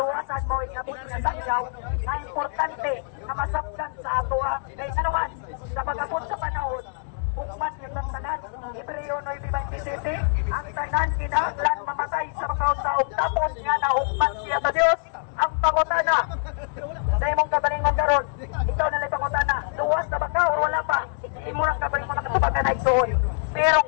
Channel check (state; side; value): silent; right; 62 dB below the other